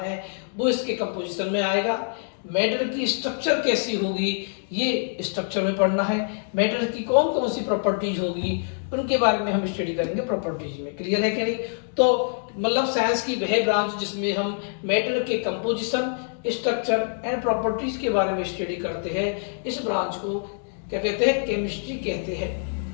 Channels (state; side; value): silent; right; digital silence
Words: है, वो इसके कंपोजिशन में आएगा। मैटर की स्ट्रक्चर कैसी होगी, ये स्ट्रक्चर में पढ़ना है। मैटर की कौन कौन सी प्रॉपर्टीज होगी, उनके बारे में हम स्टडी करेंगे प्रॉपर्टीज में। क्लियर है कि नहीं। तो मतलब साइंस की वह ब्रांच जिसमें हम मैटर के कंपोजिशन, स्ट्रक्चर एंड प्रॉपर्टीज के बारे में स्टडी करते हैं, इस ब्रांच को क्या कहते हैं, केमिस्ट्री कहते हैं।